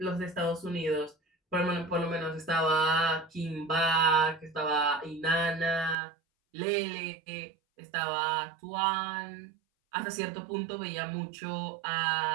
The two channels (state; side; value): drops out; left; at 6.0 s